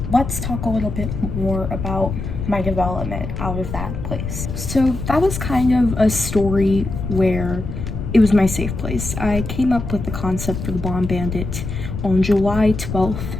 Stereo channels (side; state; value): left; noise; rumble, 6 dB below the sound